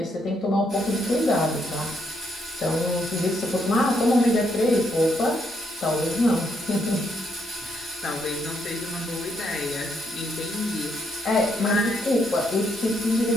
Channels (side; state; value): both; normal; correlation 0.75